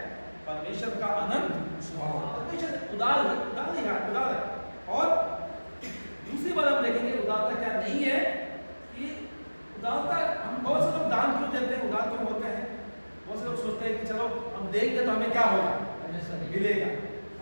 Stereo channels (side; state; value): both; inverted; correlation -1.00